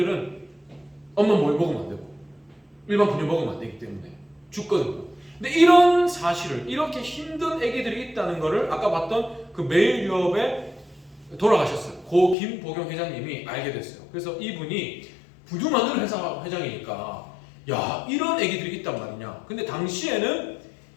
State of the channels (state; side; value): drops out; right; at 12.4 s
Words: 엄마 뭘 먹으면 안 되고 일반 분유 먹으면 안 되기 때문에 죽거든요. 근데 이런 사실을 이렇게 힘든 아기들이 있다는 거를 아까 봤던 그 매일 유업에 돌아가셨어요. 고 김보경 회장님이 알게 됐어요. 그래서 이분이 분유 만드는 회사 회장이니까 야 이런 아기들이 있단 말이냐. 근데 당시에는